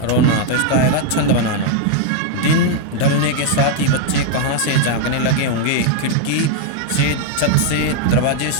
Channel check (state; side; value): different; both; correlation 0.00